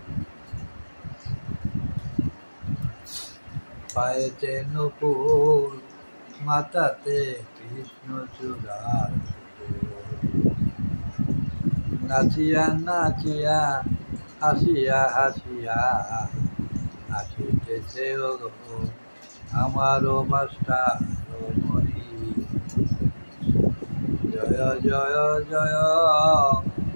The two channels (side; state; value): both; inverted; correlation -1.00